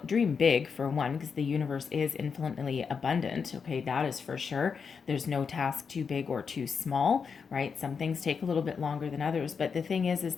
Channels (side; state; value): right; quieter; 5.9 dB